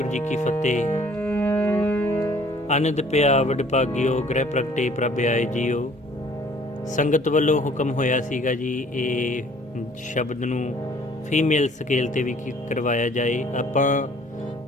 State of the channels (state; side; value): normal; both; correlation 0.56